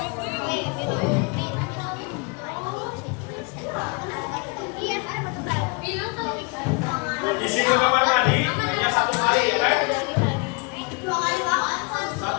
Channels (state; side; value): quieter; right; 31.4 dB